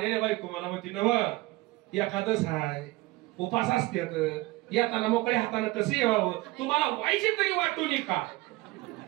बायको मला म्हणते नव एकादश हाय, उपास असतात, येताना मोकळ्या हाताने कसं यावं, तुम्हाला व्हायचे तरी वाटून का?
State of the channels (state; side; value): quieter; left; 20.4 dB